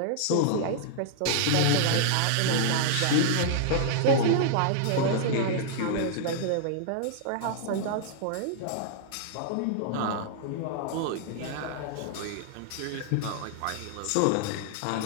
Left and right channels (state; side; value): different; both; correlation -0.01